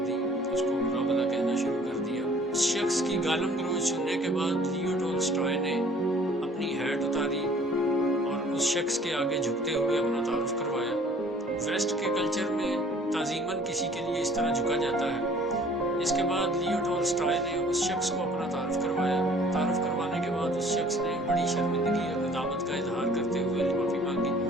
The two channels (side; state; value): both; normal; correlation 0.54